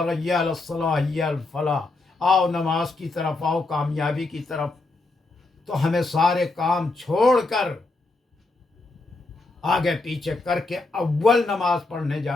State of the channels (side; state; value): right; quieter; 3.3 dB